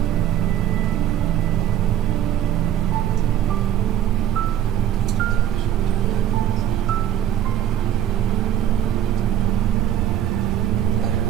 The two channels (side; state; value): left; quieter; 10.6 dB